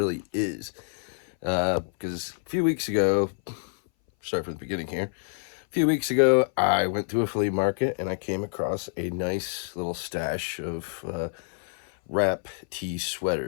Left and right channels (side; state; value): right; silent; 59 dB below the other